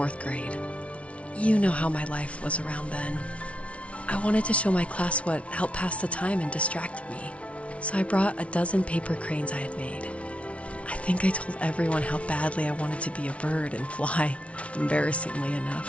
grade. You know how my life was around then. I wanted to show my class what helped pass the time and distracted me, so I brought a dozen paper cranes I had made. I think I told everyone how badly I wanted to be a bird and fly, embarrassingly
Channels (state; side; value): late; right; 0.063 ms